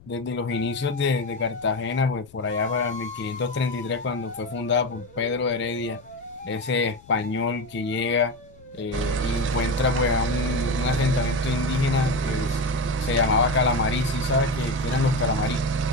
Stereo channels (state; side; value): noise; left; rumble, 25 dB below the sound